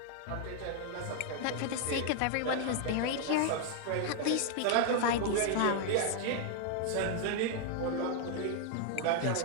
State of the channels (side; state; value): both; different; correlation 0.00